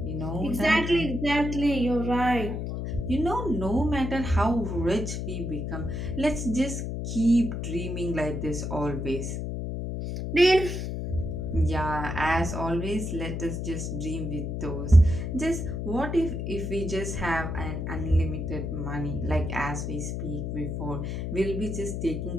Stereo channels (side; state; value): left; noise; hum, 3 dB below the sound